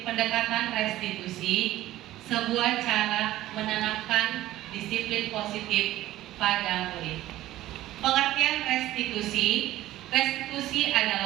pendekatan restitusi, sebuah cara menanamkan disiplin positif pada murid. Pengertian restitusi, restitusi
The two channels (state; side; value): quieter; left; 15.1 dB